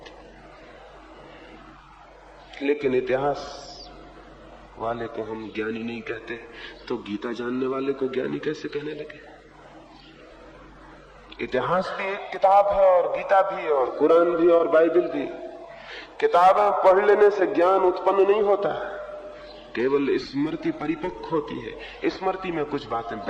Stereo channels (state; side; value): identical; both; correlation 1.00